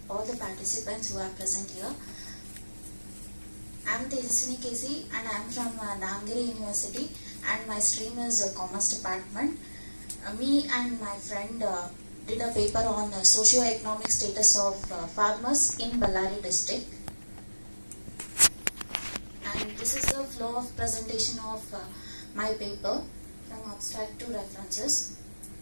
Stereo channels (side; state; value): both; inverted; correlation -1.00